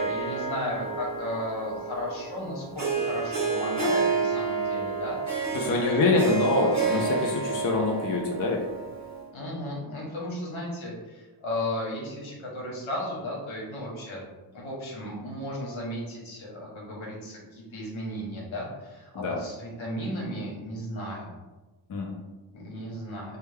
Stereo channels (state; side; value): normal; both; correlation -0.11